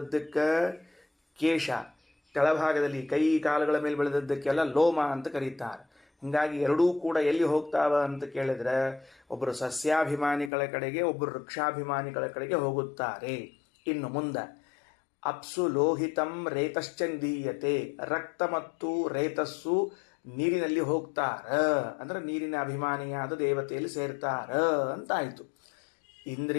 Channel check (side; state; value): right; drops out; at 10.5 s